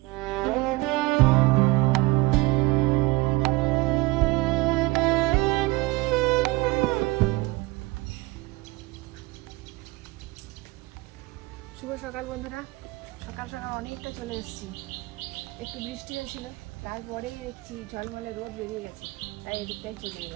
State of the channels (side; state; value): left; quieter; 22.0 dB